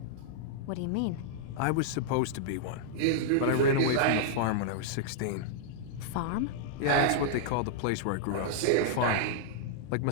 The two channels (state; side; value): different; both; correlation -0.01